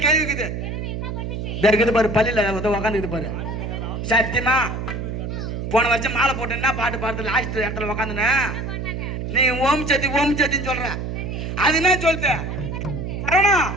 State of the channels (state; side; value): noise; right; hum, 5 dB below the sound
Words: கேள்வி இருக்குது. இருக்குது பாரு பள்ளியில உக்காந்துக்குது பாரு. சத்தியமா போன வருஷம் மாலை போட்டேன்னா பாட்டு பாடுறது லாஸ்ட் இடத்துல உக்காந்துன நீ ஓம் சத்தி ஓம் சத்தின்னு சொல்ற. அது என்ன சொல்லுது